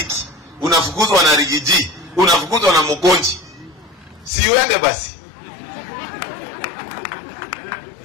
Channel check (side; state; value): right; drops out; at 4.3 s